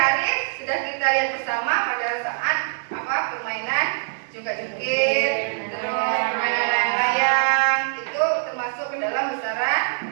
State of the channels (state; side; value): silent; left; 63 dB below the other